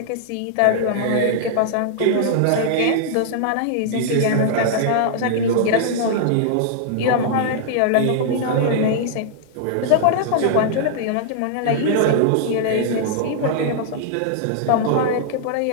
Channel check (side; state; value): both; different; correlation -0.01